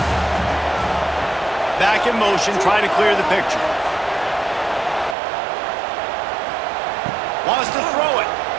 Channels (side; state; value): left; drops out; at 5.2 s